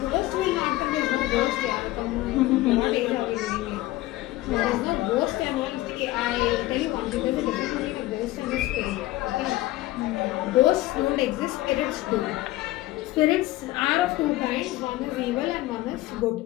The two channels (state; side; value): quieter; right; 17.2 dB